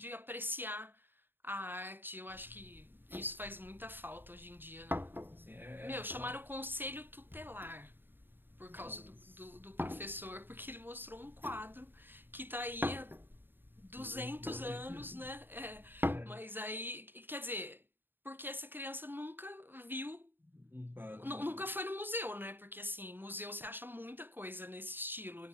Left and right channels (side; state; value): left; late; 0.097 ms